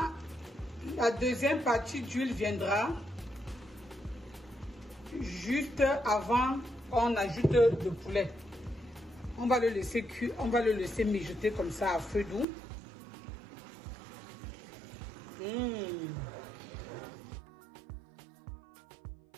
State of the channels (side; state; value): left; drops out; at 12.5 s